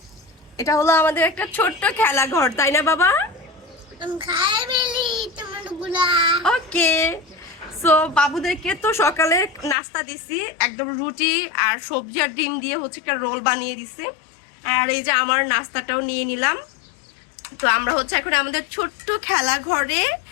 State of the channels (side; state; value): right; drops out; at 9.8 s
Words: এটা হলো আমাদের একটা ছোট্ট খেলা ঘর, তাই না বাবা? ওকে, সো বাবুদেরকে তো সকালে নাস্তা দিছি, একদম রুটি আর সবজি আর ডিম দিয়ে হচ্ছে একটা রোল বানিয়ে দিছি। আর এই যে আমার নাস্তাটাও নিয়ে নিলাম। তো আমরা হচ্ছে এখন আমাদের ছোট্ট খেলা ঘরে